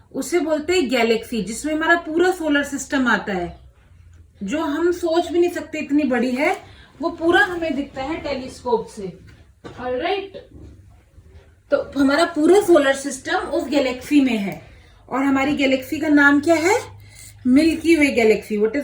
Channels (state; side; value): identical; both; correlation 1.00